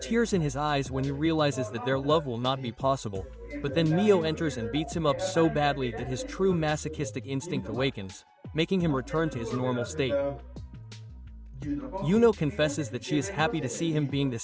in his eyes when he realizes that their love will not be possible, but then Mio enters and beats him up so badly that his true masochistic instinct awakens, making him return to his normal state. Yuno confesses that she is happy to see him being the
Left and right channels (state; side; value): identical; both; correlation 1.00